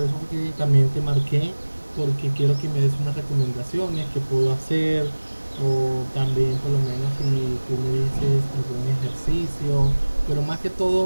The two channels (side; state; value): both; inverted; correlation -1.00